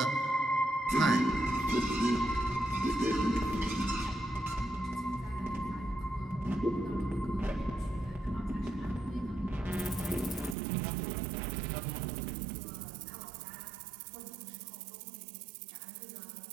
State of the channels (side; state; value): left; drops out; at 10.6 s